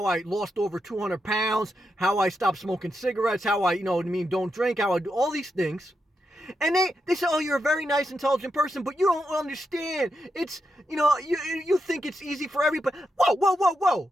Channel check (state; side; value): normal; both; correlation 0.85